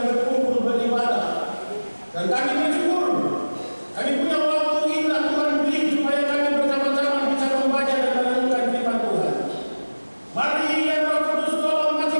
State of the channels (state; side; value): inverted; both; correlation -1.00